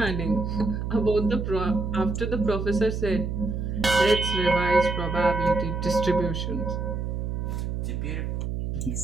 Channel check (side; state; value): right; noise; hum, 3 dB below the sound